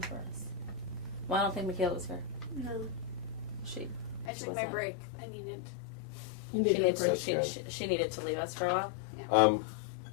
for us. Well, I don't think Michaela was here. No. She I She took my wasn't. break. I needed. You she need needed to break. she needed to leave us for a while.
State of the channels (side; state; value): right; drops out; at 4.3 s